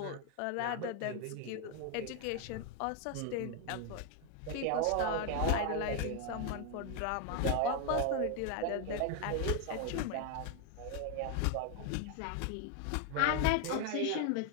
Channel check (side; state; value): both; different; correlation 0.01